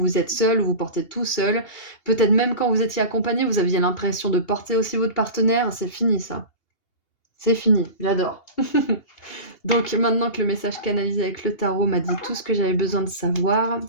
êtes seul, où vous portez tout seul. Peut-être même quand vous étiez accompagné, vous aviez l'impression de porter aussi votre partenaire. C'est fini ça. C'est fini, j'adore. Donc maintenant que le message canalisé avec le tarot m'a dit tout ce que j'avais besoin de savoir,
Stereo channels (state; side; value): late; right; 2.8 ms